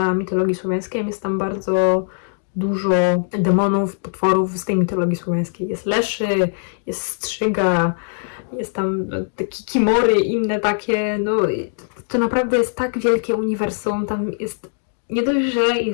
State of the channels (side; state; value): right; silent; digital silence